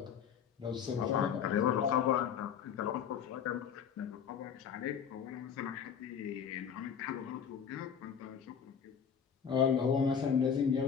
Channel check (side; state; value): right; quieter; 7.6 dB